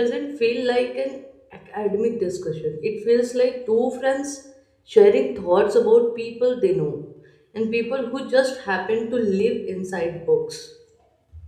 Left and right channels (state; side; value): identical; both; correlation 1.00